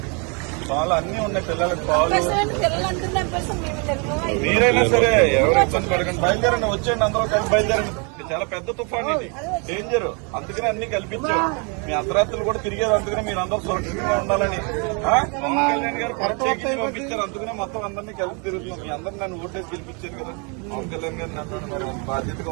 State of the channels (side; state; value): left; quieter; 34.7 dB